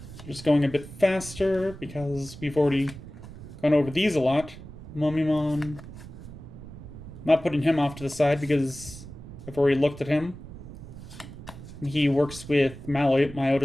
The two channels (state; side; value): noise; right; rumble, 14 dB below the sound